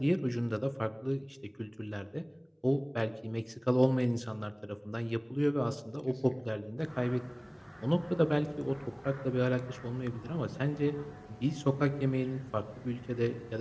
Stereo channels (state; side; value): identical; both; correlation 1.00